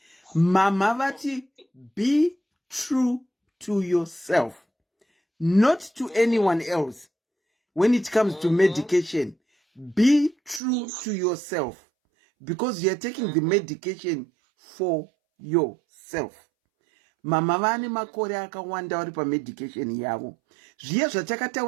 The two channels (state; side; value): drops out; left; at 10.6 s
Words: Mama vati be true to yourself, not to anyone else. When it comes to medication, be true to yourself, because you are taking the medication for yourself. Mama vane makore akawanda vari pamedication yavo. Zviya